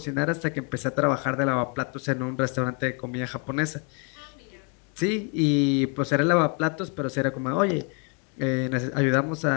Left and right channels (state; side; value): quieter; right; 35.9 dB